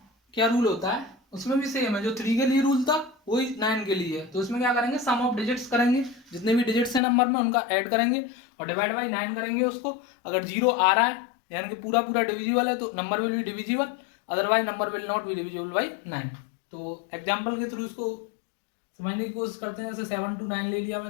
क्या रूल होता है, उसमें भी सेम है जो 3 के लिए रूल था वही 9 के लिए है। तो इसमें क्या करेंगे, सम ऑफ डिजिट्स करेंगे, जितने भी डिजिट्स हैं नंबर में उनका ऐड करेंगे और डिवाइड बाई 9 करेंगे उसको। अगर 0 आ रहा है यानी कि पूरा पूरा डिविजिबल है तो number will be divisible, otherwise number will not be divisible by 9। तो एग्जाम्पल के थ्रू इसको समझने की कोशिश करते हैं। जैसे 7 to 9 ले लिया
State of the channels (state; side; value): drops out; right; at 7.0 s